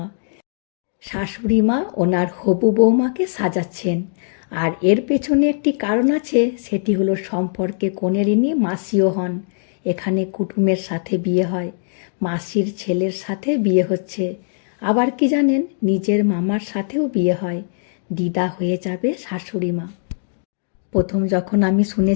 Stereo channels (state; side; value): silent; right; digital silence